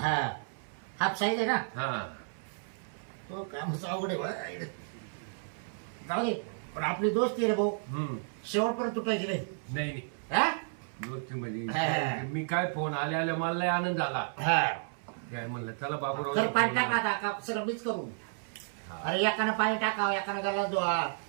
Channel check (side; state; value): left; silent; 56 dB below the other